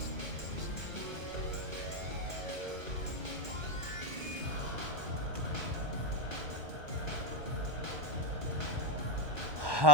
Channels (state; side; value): late; left; 1.1 ms